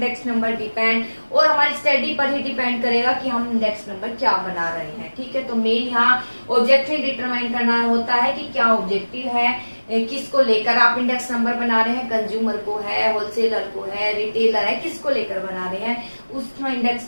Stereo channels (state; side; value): inverted; both; correlation -1.00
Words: number depend, और हमारी स्टडी पर ही डिपेंड करेगा कि हम इंडेक्स नंबर क्या बना रहे हैं, ठीक है। तो मेन यहाँ ऑब्जेक्टिव डिटरमाइन करना होता है कि क्या ऑब्जेक्टिव है, किसको लेकर आप इंडेक्स नंबर बना रहे हैं, कंज्यूमर को है, होलसेलर को है, रिटेलर है, किसको लेकर बना रहे हैं, उसमें